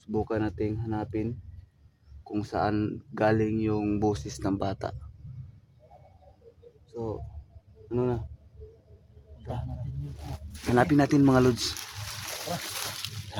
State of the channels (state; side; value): identical; both; correlation 1.00